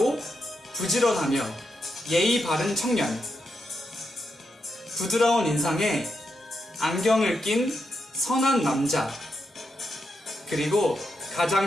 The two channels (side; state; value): both; normal; correlation 0.84